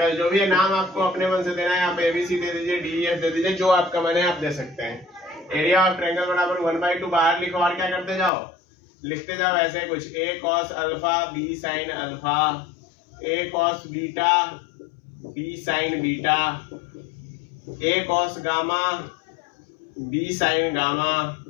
जो भी है नाम आपको अपने मन से देना है, आप एबीसी दे दीजिए, डीईएफ दे दीजिए, जो आपका मन है आप दे सकते हैं। एरिया ऑफ ट्रायंगल बराबर 1/2 बाहर लिखो और क्या करते जाओ, लिखते जाओ ऐसे कुछ, a cos alpha b sin alpha, a cos beta b sin beta, a cos gamma b sin gamma,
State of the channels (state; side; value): drops out; right; at 8.3 s